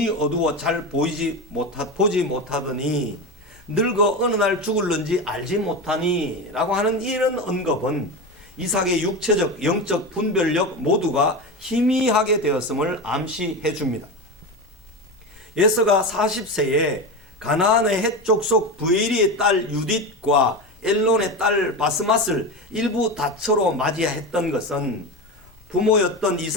어두워 잘 보지 못하더니 늙어 어느 날 죽을는지 알지 못하니 라고 하는 이런 언급은 이삭의 육체적 영적 분별력 모두가 희미하게 되었음을 암시해 줍니다. 예서가 40세에 가나안의 헷 족속 부에리의 딸 유딧과 엘론의 딸 바스맛을 일부 다처로 맞이했던 것은 부모였던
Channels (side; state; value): left; noise; rumble, 28 dB below the sound